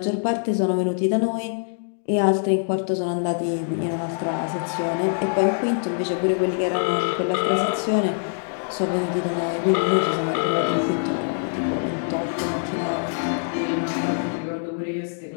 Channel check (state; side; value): silent; right; digital silence